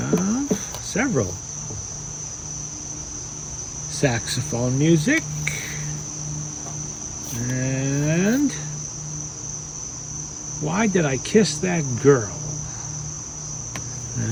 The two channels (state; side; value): identical; both; correlation 1.00